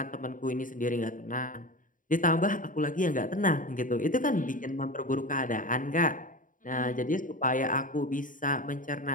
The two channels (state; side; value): late; right; 0.39 ms